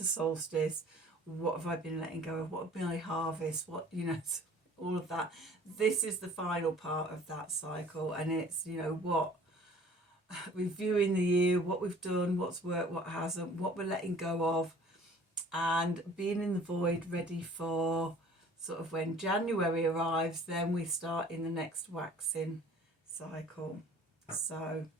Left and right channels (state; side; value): normal; both; correlation 0.50